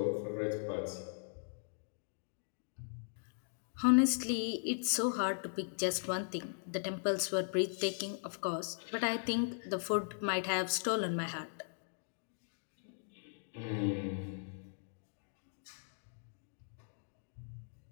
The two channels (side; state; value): right; silent; digital silence